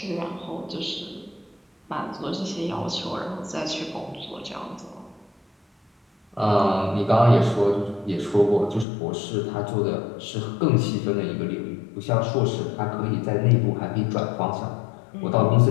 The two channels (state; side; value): drops out; right; at 8.8 s